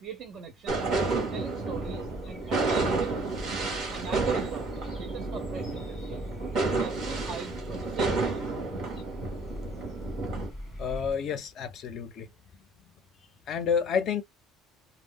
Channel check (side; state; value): both; normal; correlation 0.55